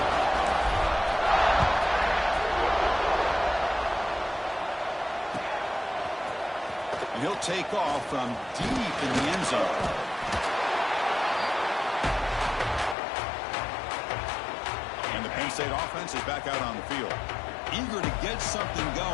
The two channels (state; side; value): drops out; right; at 13.0 s